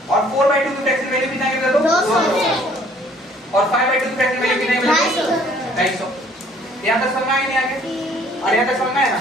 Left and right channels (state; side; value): normal; both; correlation 0.58